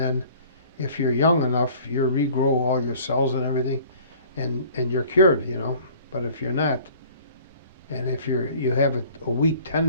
if you're young enough, you regrow all your cells and everything, and you're cured, you know. But if you're not, and if you have a weak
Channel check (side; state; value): both; inverted; correlation -0.49